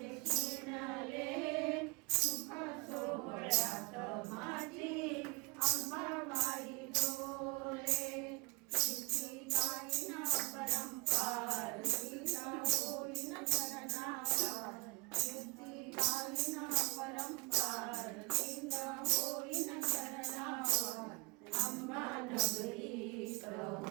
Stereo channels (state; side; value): quieter; left; 26.7 dB